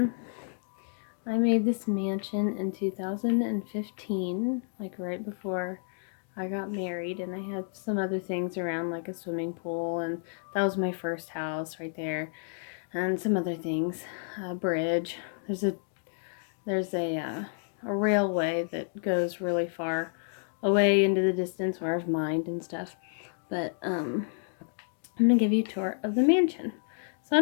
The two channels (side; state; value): right; silent; digital silence